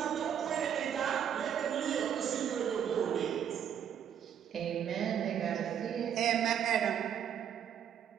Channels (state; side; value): quieter; left; 8.9 dB